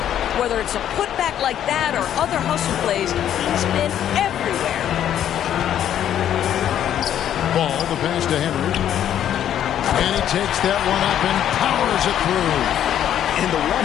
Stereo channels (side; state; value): right; quieter; 10.5 dB